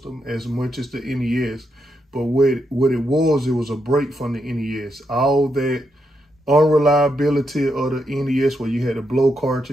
as much as the NES. But what it was a break from the NES. All that unreliability of the NES where you had to blow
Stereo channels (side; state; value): both; normal; correlation 0.82